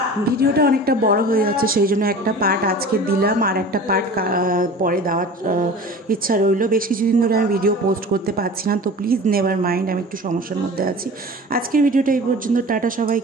ভিডিওটা অনেকটা বড় হয়ে যাচ্ছে, সেই জন্য একটা পার্ট আজকে দিলাম, আর একটা পার্ট পরে দেওয়ার ইচ্ছা রইল। বেশ কিছুদিন ধরে আমি ভিডিও পোস্ট করতে পারছি না, তো প্লিজ নেভার মাইন্ড, আমি একটু সমস্যার মধ্যে আছি। আজকের ভিডিওটা এই পর্যন্ত, টাটা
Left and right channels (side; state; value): both; normal; correlation 0.39